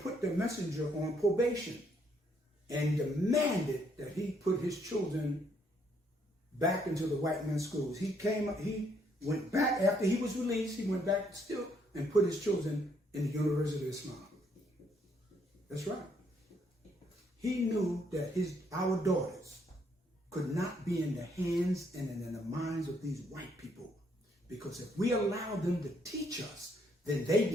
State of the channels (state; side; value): normal; both; correlation 0.70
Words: the messenger on probation and demanded that he put his children back into the white man's schools. He went back after he was released. He went back still and put his children in the University of Islam. That's right. He knew that our daughters could not be in the hands and in the minds of these white people, because if we allow them to teach us, then they